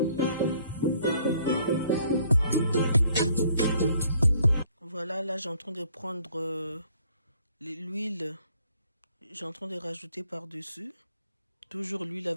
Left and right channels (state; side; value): inverted; both; correlation -0.62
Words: Voilà, là j'ai en train de prendre l'huile. J'ai en train de rajouter par-dessus. Toujours l'huile